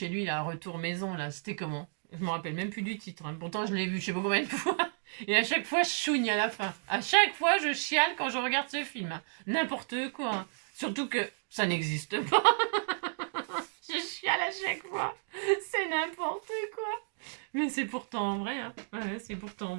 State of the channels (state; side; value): silent; left; digital silence